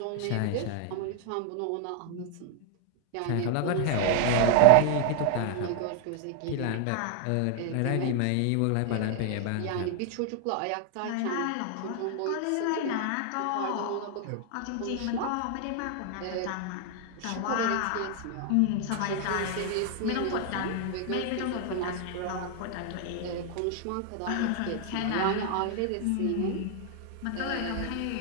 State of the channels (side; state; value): both; different; correlation 0.00